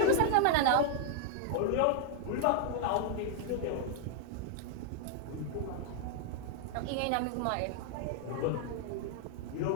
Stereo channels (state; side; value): different; both; correlation -0.01